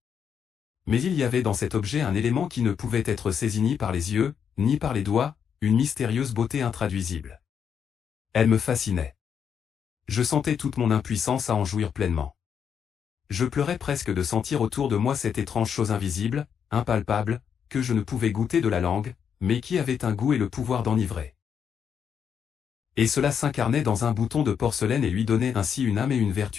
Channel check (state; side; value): quieter; right; 7.6 dB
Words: Mais il y avait dans cet objet un élément qui ne pouvait être saisi ni par les yeux, ni par les doigts, une mystérieuse beauté intraduisible. Elle me fascinait. Je sentais toute mon impuissance à en jouir pleinement. Je pleurais presque de sentir autour de moi cette étrange chose invisible, impalpable, que je ne pouvais goûter de la langue, mais qui avait un goût et le pouvoir d'enivrer. Et cela s'incarnait dans un bouton de porcelaine et lui donnait ainsi une âme et une